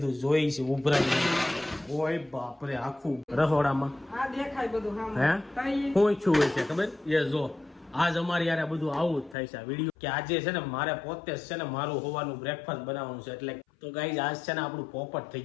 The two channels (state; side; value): drops out; right; at 9.3 s